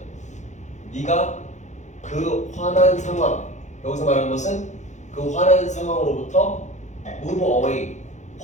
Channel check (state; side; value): late; right; 0.34 ms